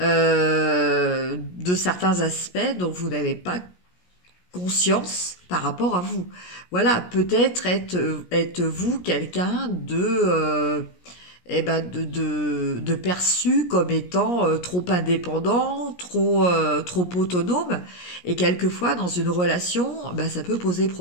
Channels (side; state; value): right; late; 17 ms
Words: certains aspects dont vous n'avez pas conscience par rapport à vous. Voilà, peut-être êtes-vous quelqu'un de perçu comme étant trop indépendant, trop autonome, et quelquefois dans une relation, ça peut poser